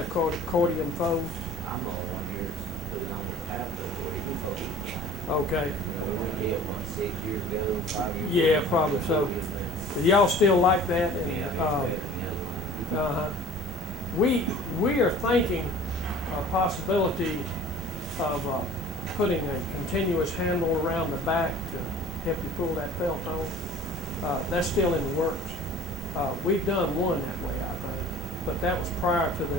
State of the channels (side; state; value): both; normal; correlation 0.45